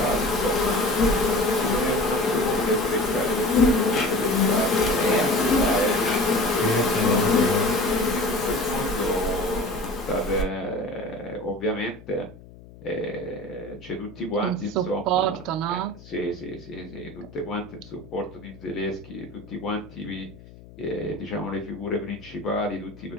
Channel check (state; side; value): noise; left; hum, 20 dB below the sound